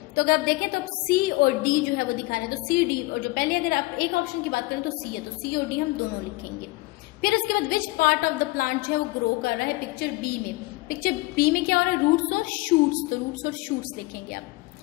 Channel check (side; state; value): right; quieter; 21.9 dB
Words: अगर आप देखें तो सी और डी जो है वो दिखा रहे हैं, तो सी डी, और जो पहले अगर आप एक ऑप्शन की बात करें तो सी है, तो सी और डी हम दोनों लिखेंगे। फिर उसके बाद which part of the plant जो है वो ग्रो कर रहा है पिक्चर बी में, पिक्चर बी में क्या हो रहा है, रूट्स और शूट्स, तो रूट्स और शूट्स लिखेंगे आप।